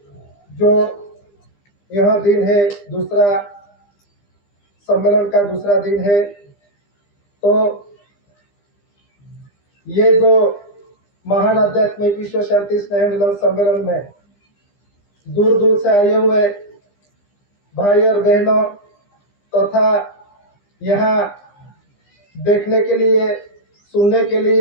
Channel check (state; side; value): late; right; 15 ms